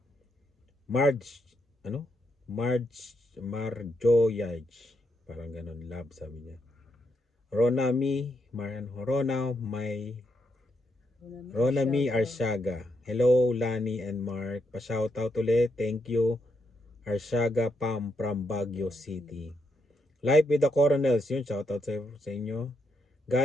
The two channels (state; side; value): normal; both; correlation 0.80